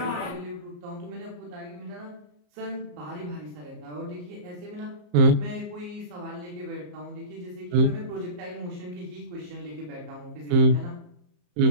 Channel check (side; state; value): left; late; 34 ms